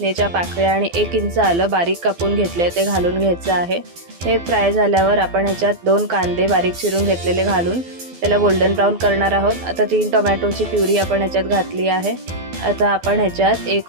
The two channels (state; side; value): late; left; 12 ms